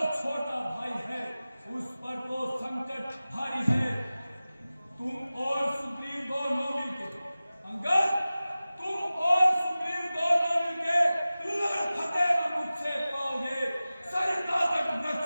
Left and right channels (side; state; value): both; inverted; correlation -0.96